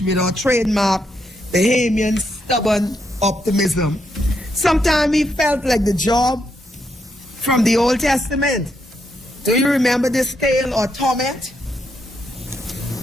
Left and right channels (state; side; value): normal; both; correlation 0.79